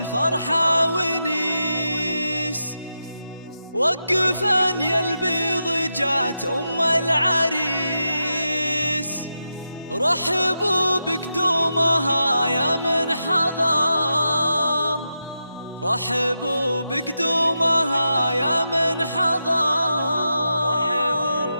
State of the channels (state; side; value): inverted; both; correlation -0.87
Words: ونيس. وقفا يا البيض جات أم العريس، رحبوا بقدومها يا من حضر، رحبوا بقدومها يا من حضر،